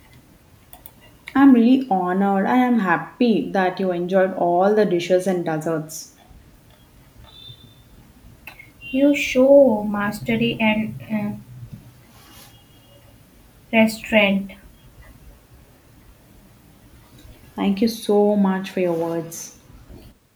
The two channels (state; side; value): identical; both; correlation 1.00